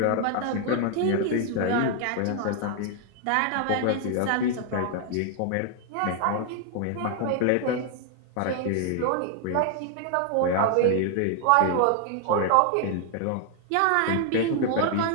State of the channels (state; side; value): different; both; correlation 0.00